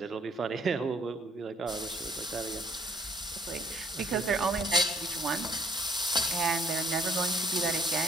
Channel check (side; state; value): both; normal; correlation 0.62